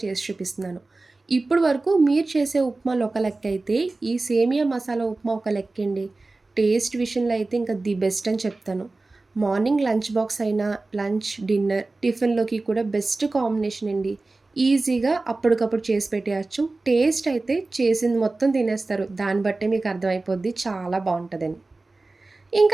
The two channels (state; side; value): quieter; left; 3.3 dB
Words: చేసి చూపిస్తున్నాను. ఇప్పుడు వరకు మీరు చేసే ఉప్మాలు ఒక లెక్క అయితే, ఈ సేమియా మసాలా ఉప్మా ఒక లెక్కండి. టేస్ట్ విషయంలో అయితే ఇంకా ది బెస్ట్ అని చెప్తాను. మార్నింగ్ లంచ్ బాక్స్ అయినా, లంచ్, డిన్నర్, టిఫిన్‌లోకి కూడా బెస్ట్ కాంబినేషన్ అండి. ఈజీగా అప్పటికప్పుడు చేసి పెట్టేయచ్చు. టేస్ట్ అయితే చేసింది మొత్తం తినేస్తారు. దాన్ని బట్టే మీకు అర్థమైపోద్ది చాలా బావుంటదని.